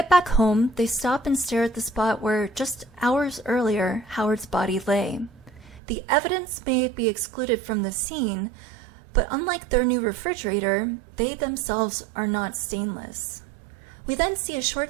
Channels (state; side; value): drops out; left; at 5.8 s